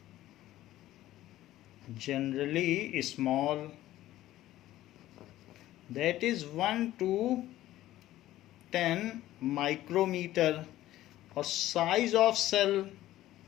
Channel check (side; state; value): right; quieter; 14.7 dB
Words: generally small, that is 1 to 10 micrometer. और size of cell